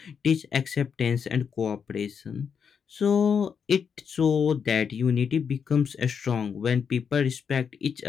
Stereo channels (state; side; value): quieter; right; 6.7 dB